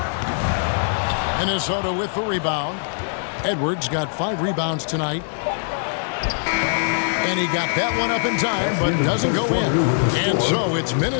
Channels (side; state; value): right; silent; digital silence